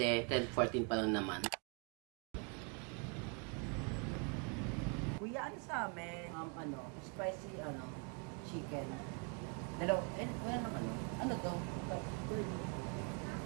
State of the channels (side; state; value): left; quieter; 35.9 dB